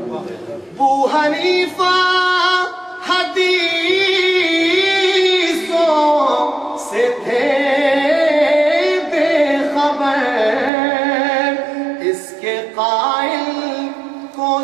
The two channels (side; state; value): left; drops out; at 10.7 s